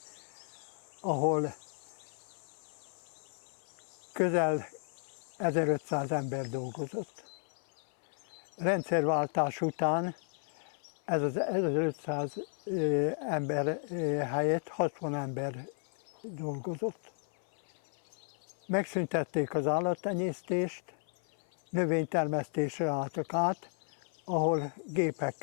ahol közel 1500 ember dolgozott. Rendszerváltás után ez az 1500 ember helyett 60 ember dolgozott. Megszüntették az állattenyésztést, növénytermesztésre álltak át, ahol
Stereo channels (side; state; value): right; silent; 55 dB below the other